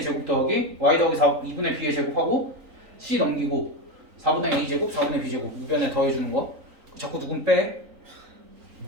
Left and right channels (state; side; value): late; left; 3.9 ms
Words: 제곱 더하기 y 더하기 2분의 b의 제곱하고 c 넘기고 4분의 a 제곱 4분의 b 제곱 우변에 더해주는 거. 자꾸 누군 빼?